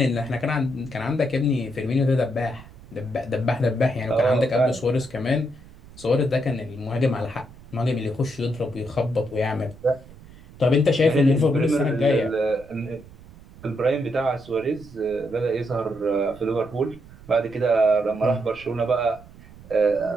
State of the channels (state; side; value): noise; right; rumble, 20 dB below the sound